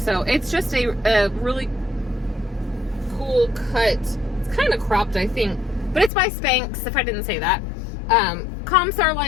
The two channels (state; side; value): drops out; right; at 6.1 s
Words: it's just a really cool cut. It's kind of cropped, I think, but it's by Spanx, if I didn't say that. Comps are